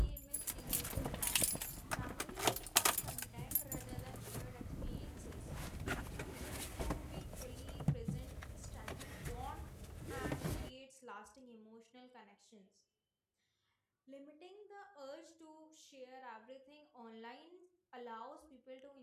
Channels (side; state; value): both; identical; correlation 1.00